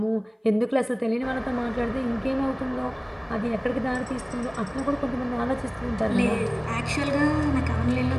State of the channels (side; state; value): both; identical; correlation 1.00